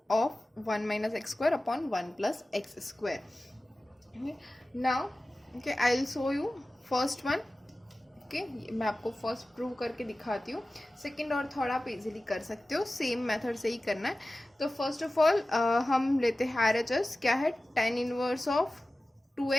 of 1 minus x square upon 1 plus x square. Okay, now okay, I'll show you first one. Okay, मैं आपको first prove करके दिखाती हूँ. Second और third आप easily कर सकते हो, सेम मेथड से ही करना है. तो फर्स्ट ऑफ ऑल हम लेते हैं RHS. क्या है, tan inverse of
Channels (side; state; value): both; normal; correlation 0.96